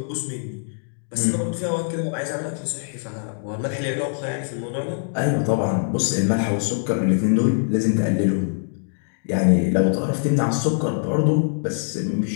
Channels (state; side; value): silent; right; digital silence